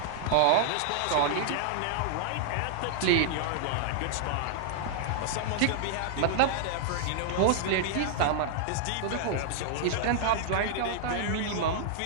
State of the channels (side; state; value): both; different; correlation -0.01